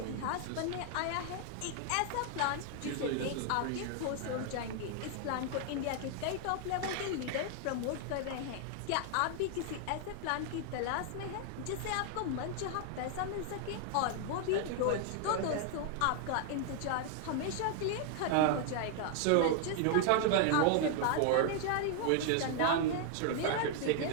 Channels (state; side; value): different; both; correlation 0.00